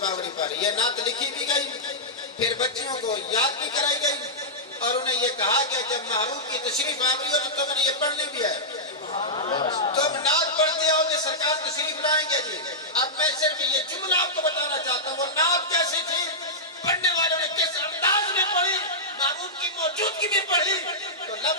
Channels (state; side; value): normal; both; correlation -0.12